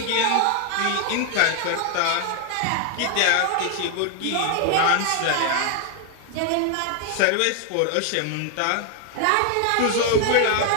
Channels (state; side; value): different; both; correlation 0.00